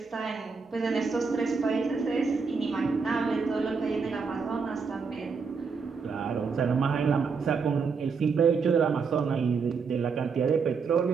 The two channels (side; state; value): left; quieter; 5.3 dB